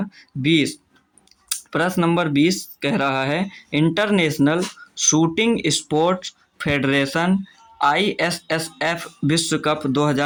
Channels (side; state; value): both; identical; correlation 1.00